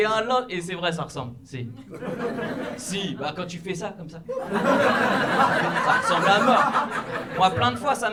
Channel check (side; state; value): both; identical; correlation 1.00